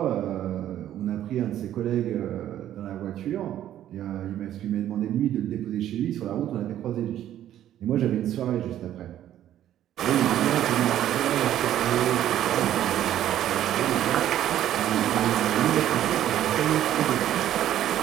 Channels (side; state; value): left; quieter; 11.8 dB